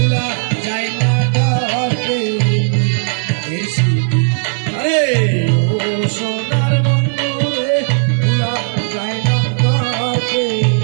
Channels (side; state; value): left; silent; digital silence